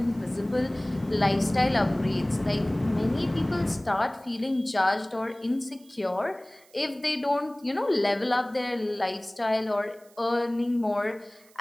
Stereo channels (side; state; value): right; noise; hiss, 28 dB below the sound